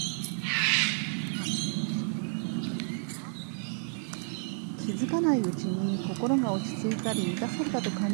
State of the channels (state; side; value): silent; left; 57 dB below the other